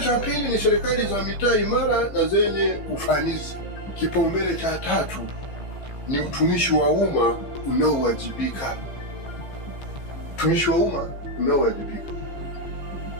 pili ni serikali za mitaa imara na zenye ufanisi. Kipaumbele cha tatu ni utumishi wa umma unaowajibika. Utumishi wa umma unaowajibika.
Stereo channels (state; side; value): late; right; 15 ms